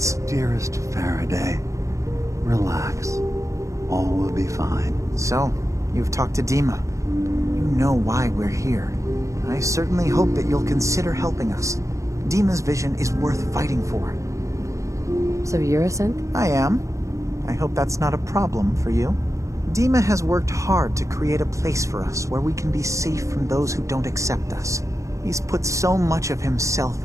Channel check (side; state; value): left; late; 0.15 ms